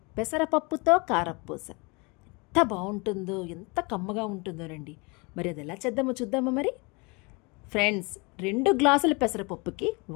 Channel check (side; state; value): right; quieter; 28.6 dB